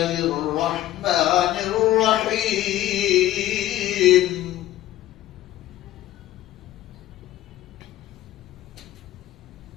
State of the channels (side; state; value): right; quieter; 14.0 dB